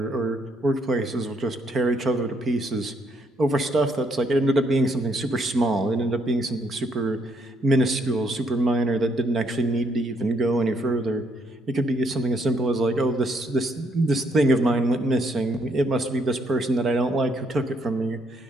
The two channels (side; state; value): both; normal; correlation 0.71